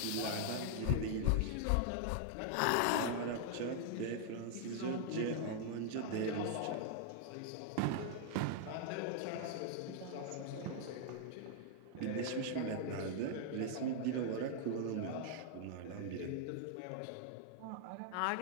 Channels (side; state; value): both; different; correlation 0.00